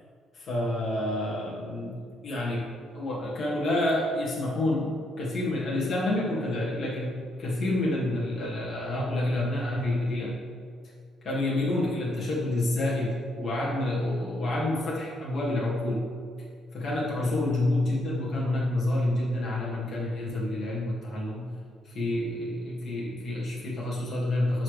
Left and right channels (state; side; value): normal; both; correlation 0.76